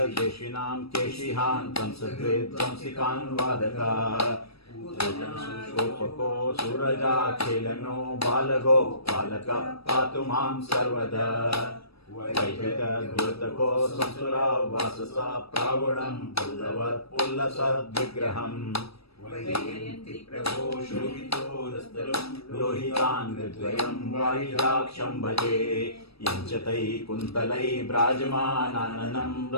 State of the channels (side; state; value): right; late; 0.77 ms